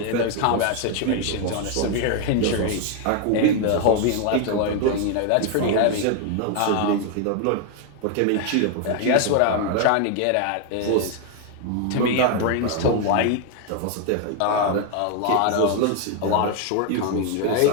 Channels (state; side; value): different; both; correlation 0.01